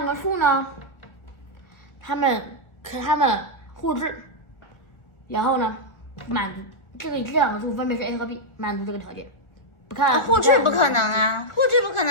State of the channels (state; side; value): late; right; 1.4 ms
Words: 个数呢，它们互质，然后呢，满足这2个数分别是 a 和 b， 满足这个条件。不看互质不可能啊，互质不可